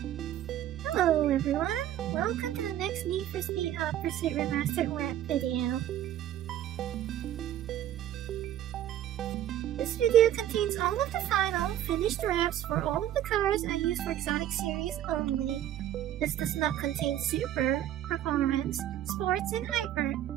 hello everyone. Welcome to the next Need for Speed Hot Pursuit Remastered Rap video. This video contains all of the final, finished raps for all of the cars I use for Exotic Series only. This does not contain Super, Performance, Sports, and Hyper.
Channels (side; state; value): left; quieter; 11.9 dB